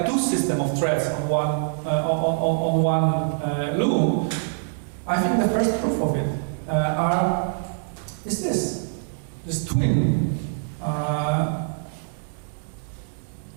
2 systems of threads on one loom. I think the first proof of it is this twin.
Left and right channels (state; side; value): silent; left; digital silence